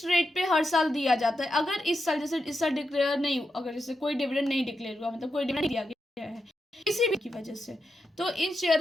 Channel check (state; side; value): normal; both; correlation 0.87